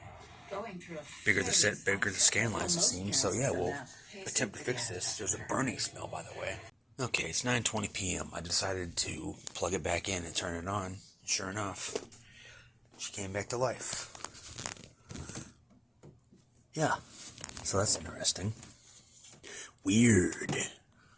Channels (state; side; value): identical; both; correlation 1.00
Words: Bigger the set, bigger the scan lines it seems. So yeah, we'll attempt to fix this. There's a burning smell, by the way. Okay, it's 9:20 p.m. I decided to plug it back in and turn it on. Sure enough, she came back to life. Yeah, so that's interesting. Weird.